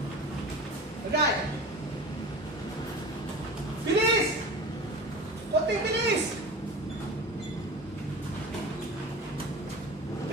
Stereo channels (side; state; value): both; normal; correlation 0.34